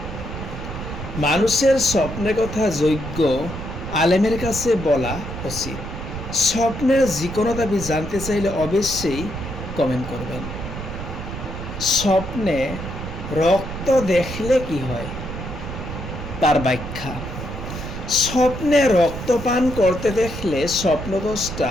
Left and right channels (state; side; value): noise; right; rumble, 8 dB below the sound